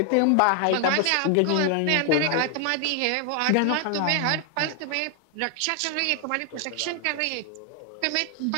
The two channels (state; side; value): different; both; correlation 0.00